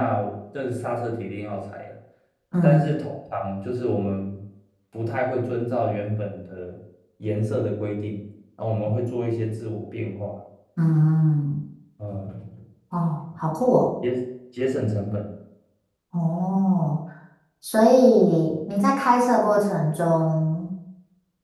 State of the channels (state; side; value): identical; both; correlation 1.00